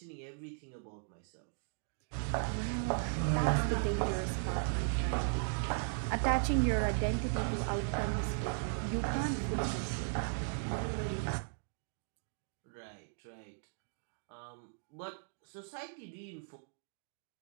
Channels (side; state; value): left; silent; digital silence